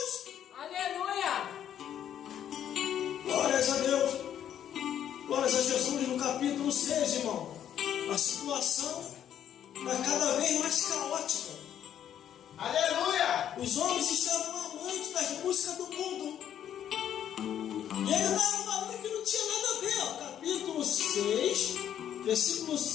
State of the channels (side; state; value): right; quieter; 10.0 dB